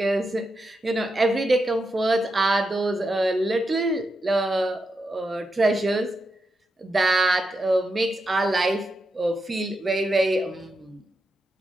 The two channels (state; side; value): normal; both; correlation 0.86